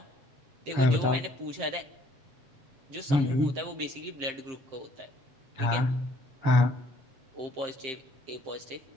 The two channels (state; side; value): late; left; 7.6 ms